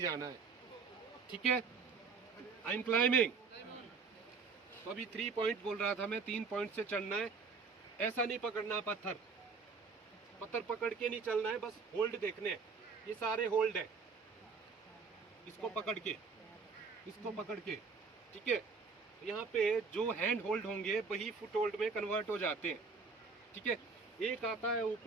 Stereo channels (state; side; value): quieter; left; 5.0 dB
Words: जाना है, ठीक है। I am climbing. तो अभी 3 पॉइंट बोल रहा था मैं, 3 पॉइंट से चढ़ना है। ऐसा नहीं पकड़ना पत्थर, पत्थर पकड़ के नहीं चलना है, बस होल्ड देखने हैं। ये सारे होल्ड है, इसको पकड़ के, इसको पकड़ के, ठीक है। यहाँ पे जो हैंड होल्ड होंगे वही फुट होल्ड में कन्वर्ट हो जाते हैं, ठीक है। एक आता है